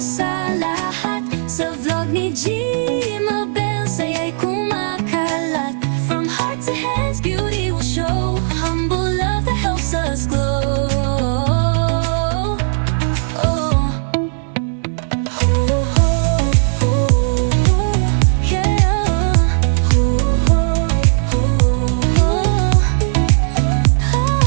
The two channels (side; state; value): left; silent; digital silence